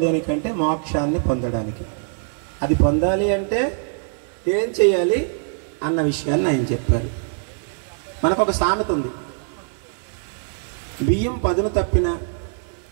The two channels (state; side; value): silent; left; digital silence